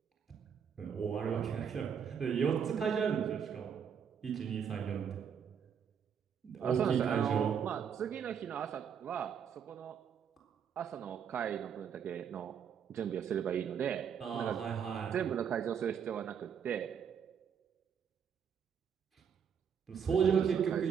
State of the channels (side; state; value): left; quieter; 7.6 dB